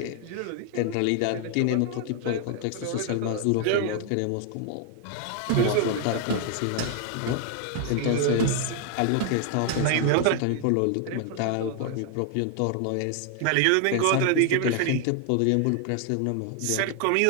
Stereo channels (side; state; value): both; different; correlation 0.00